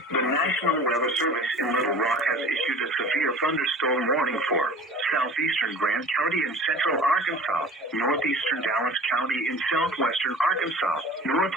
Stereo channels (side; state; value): both; normal; correlation 0.42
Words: The National Weather Service in Little Rock has issued a severe thunderstorm warning for southeastern Grant County in central Arkansas, northeastern Dallas County in southwestern Arkansas,